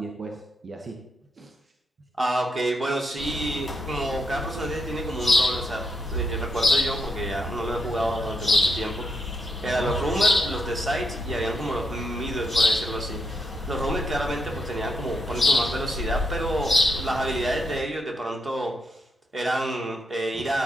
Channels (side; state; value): both; normal; correlation 0.81